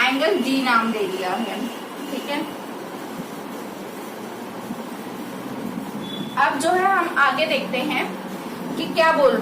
d नाम दे दिया है। ठीक है, अब जो है हम आगे देखते हैं कि क्या बोल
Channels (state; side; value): identical; both; correlation 1.00